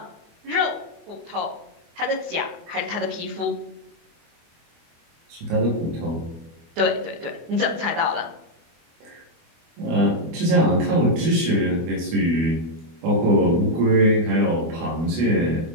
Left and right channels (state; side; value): late; left; 24 ms